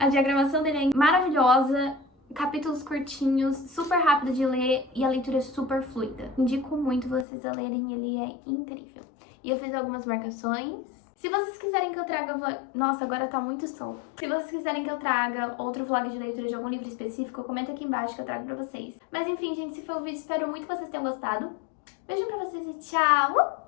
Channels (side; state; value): right; drops out; at 7.2 s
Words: diagramação dele é maravilhosa, capítulos curtinhos, super rápido de ler e a leitura é super fluida. Indico muito vocês a lerem, ele é incrível. E eu fiz algumas marcações. Se vocês quiserem que eu traga... Nossa, agora tá muito sol. Se vocês quiserem que eu traga outro vlog de leitura de algum livro específico, comenta aqui embaixo que eu trago pra vocês. Mas enfim, gente, esse foi o vídeo. Espero muito que vocês tenham gostado. Beijo pra vocês e tchau!